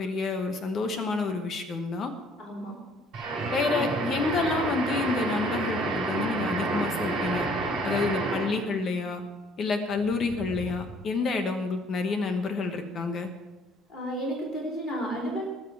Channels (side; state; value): both; normal; correlation 0.59